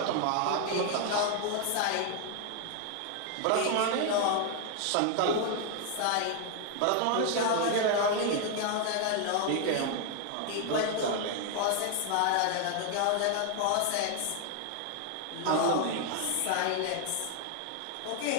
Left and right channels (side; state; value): both; different; correlation 0.00